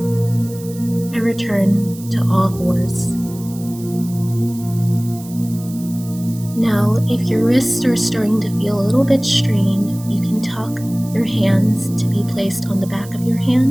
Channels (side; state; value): right; noise; hiss, 18 dB below the sound